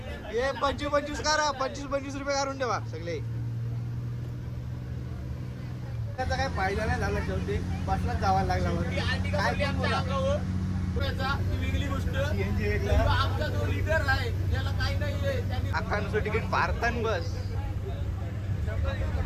हे 25 करा. 25 रुपये काढून ठेवा सगळे. त्याचा काय फायदा नाही झाला. शेवटी बसलाच जावा लागला. काय बोला वेगळी गोष्ट. CNG वेगळं. आमचा जो लीडर आहे त्याला काही नाहीये. त्यांनी अख्खांचं तिकीट पारतान बस.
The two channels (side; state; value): both; identical; correlation 1.00